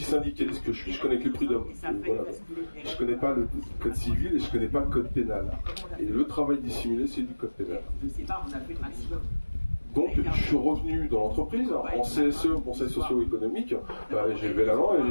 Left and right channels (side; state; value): both; inverted; correlation -1.00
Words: syndicaliste que je suis, je connais que les prud'hommes. Voilà. Je connais pas le code civil et je connais pas le code pénal. Et le travail dissimulé, c'est du code pénal. Donc, je suis revenu dans l'entreprise, en CSE, Conseil socio-économique, j'ai levé la main